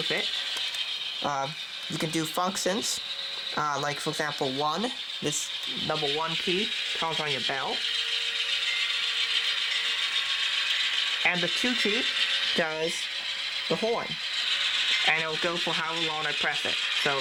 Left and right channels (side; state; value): both; identical; correlation 1.00